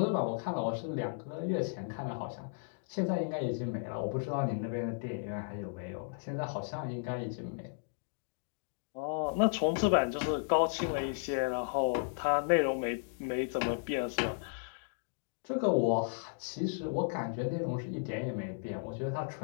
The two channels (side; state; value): right; silent; digital silence